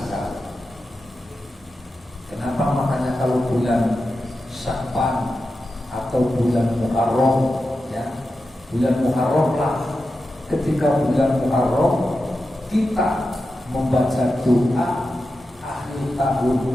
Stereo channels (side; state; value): both; normal; correlation 0.91